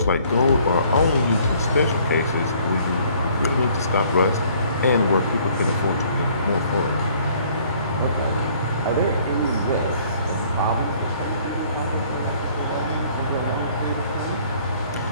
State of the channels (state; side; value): inverted; both; correlation -0.59